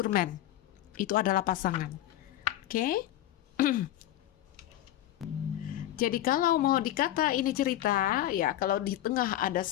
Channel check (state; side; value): quieter; right; 13.2 dB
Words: man. Itu adalah pasangan. Oke? Jadi kalau mau dikata ini cerita, ya kalau di tengah ada